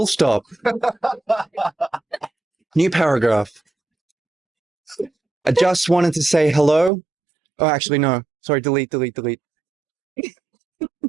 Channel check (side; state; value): left; drops out; at 6.9 s